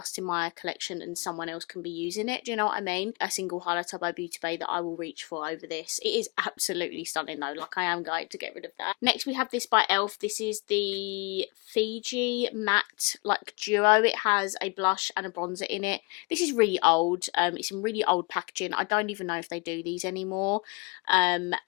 in my collection and someone else can be using it. Do you know what I mean? A single highlighter by Beauty Bay that I will reach for over this. It is absolutely stunning though. Like, I am going to get rid of that. Next we have this by ELF. This is the Fiji Matte like duo. It has a blush and a bronzer in it. This is really old. It's in really old packaging. I don't even know if they do these anymore. And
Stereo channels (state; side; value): quieter; right; 29.0 dB